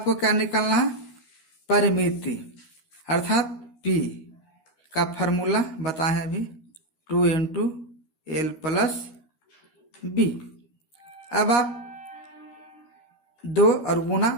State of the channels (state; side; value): late; right; 13 ms